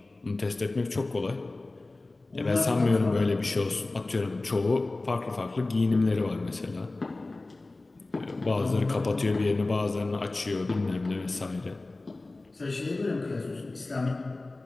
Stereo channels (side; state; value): right; quieter; 3.1 dB